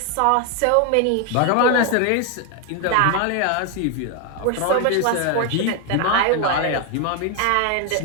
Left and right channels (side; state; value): both; different; correlation 0.01